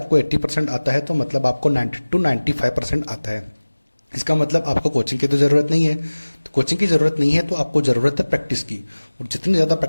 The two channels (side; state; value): both; inverted; correlation -1.00